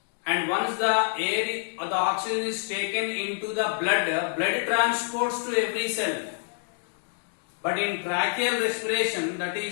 And once the air or the oxygen is taken into the blood transports to every cell. But in tracheal respiration, that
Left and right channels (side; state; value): right; silent; 60 dB below the other